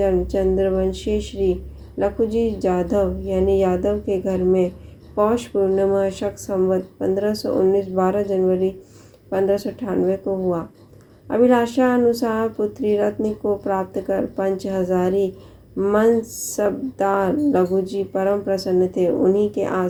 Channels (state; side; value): identical; both; correlation 1.00